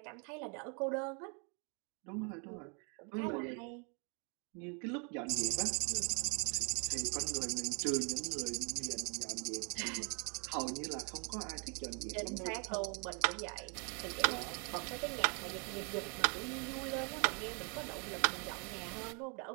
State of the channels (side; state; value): left; quieter; 36.1 dB